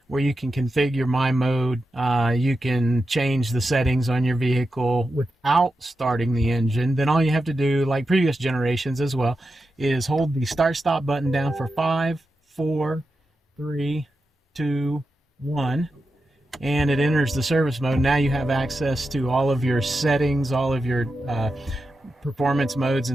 where you can configure my mode, you can change the settings on your vehicle without starting the engine, then all you have to do, like previous generations as well, is hold the start stop button down for 5, 4, 3, 2, 1, and it enters the service mode. Now you have access to all of your settings, all of your performance modes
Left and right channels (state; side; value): normal; both; correlation 0.89